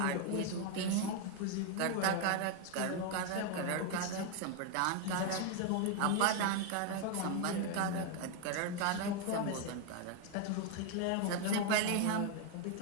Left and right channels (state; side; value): different; both; correlation 0.01